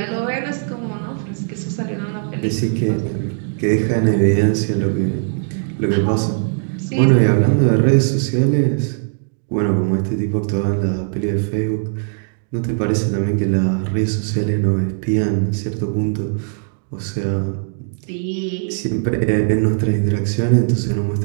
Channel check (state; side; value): silent; left; digital silence